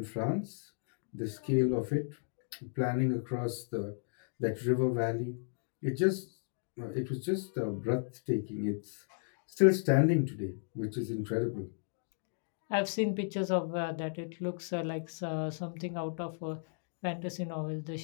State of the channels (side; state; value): right; silent; digital silence